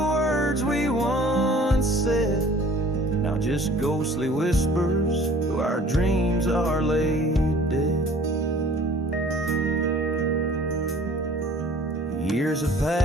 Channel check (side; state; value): both; normal; correlation 0.50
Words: we once said, now just ghostly whispers though our dreams are laid dead. Years have